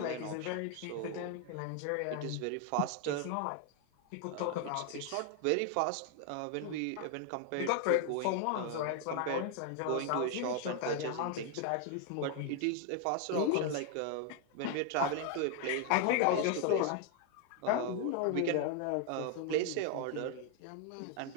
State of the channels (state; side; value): different; both; correlation 0.00